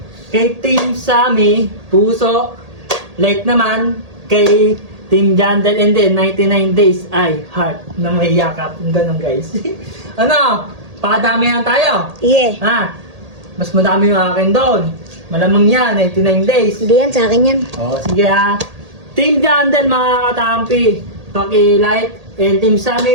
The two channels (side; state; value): left; late; 1.8 ms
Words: Kay Team Sammy, puso. Like naman, kay Team Jandel and then 99 days ay heart na may yakap. Ganun guys. Ano? Pakadamihan tayo. Yeah. Ha? Mas madami yung akin doon. Malamang yan, 99 days. Hindi yan, sa akin yan. Oh, sige ha. Team Jandel mga katampi, paki-like. And Team